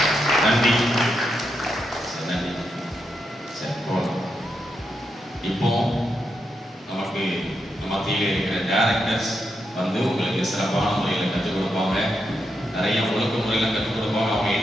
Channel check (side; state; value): both; normal; correlation 0.83